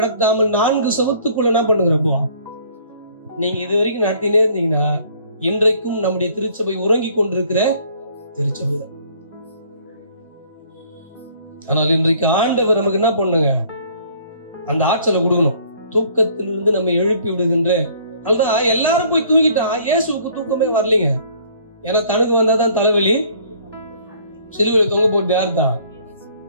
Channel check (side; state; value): both; inverted; correlation -0.57